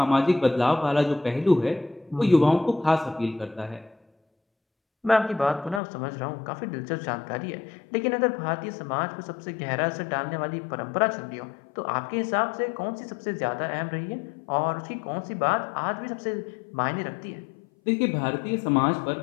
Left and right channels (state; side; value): drops out; right; at 5.8 s